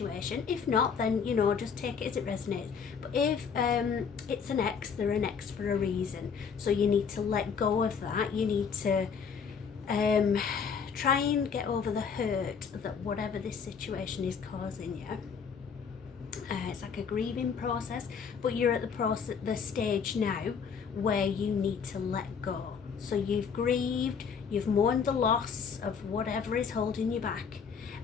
If not, then just take it as it resonates. But if it's an ex, they're an ex for a reason. So you need to let go of that. You need to try and get over the hurt that whatever this situation is causing you. It's like a grieving process, but you're at the stage now where you need to let go. So you've grieved, you've mourned the loss of whatever is holding you back,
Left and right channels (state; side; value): quieter; right; 6.3 dB